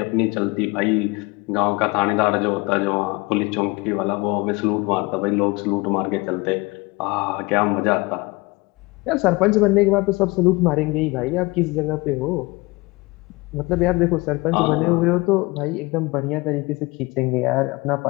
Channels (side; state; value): right; quieter; 24.1 dB